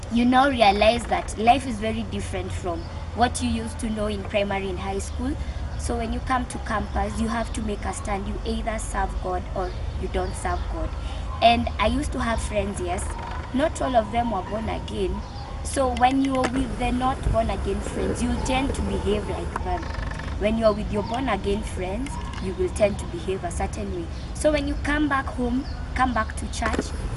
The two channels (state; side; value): identical; both; correlation 1.00